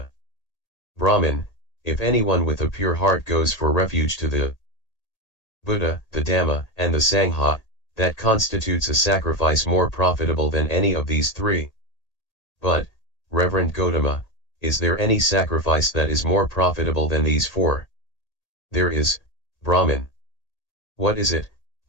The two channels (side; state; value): right; late; 1.8 ms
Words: Brahmin, if anyone with a pure heart goes for refuge to the Buddha, the Dhamma, and the Sangha, that constitutes a sacrifice more profitable than any of these three. But, Reverend Gautama, is there any sacrifice that is more profitable than these four? There is, Brahmin. What is it,